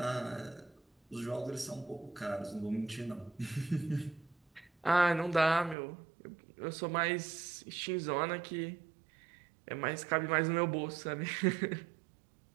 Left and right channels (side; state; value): left; drops out; at 5.8 s